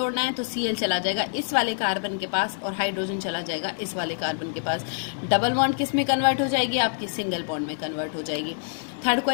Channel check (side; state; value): right; silent; 61 dB below the other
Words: है तो Cl चला जाएगा इस वाले कार्बन के पास और हाइड्रोजन चला जाएगा इस वाले कार्बन के पास। डबल बॉन्ड किस में कन्वर्ट हो जाएगी, आपकी सिंगल बॉन्ड में कन्वर्ट हो जाएगी। थर्ड